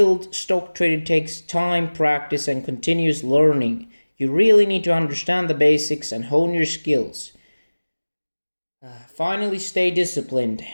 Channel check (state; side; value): inverted; both; correlation -1.00